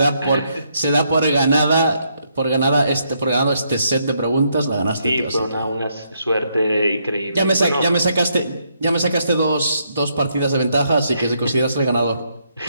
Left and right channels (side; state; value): both; inverted; correlation -0.75